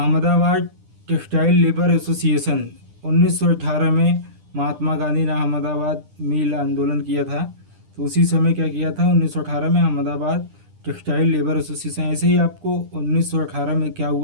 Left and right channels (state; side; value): late; left; 10 ms